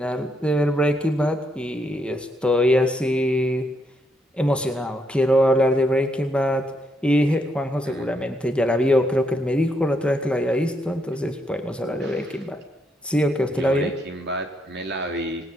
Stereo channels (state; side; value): normal; both; correlation 0.77